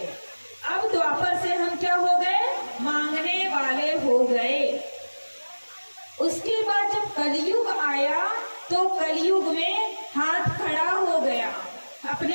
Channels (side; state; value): both; inverted; correlation -1.00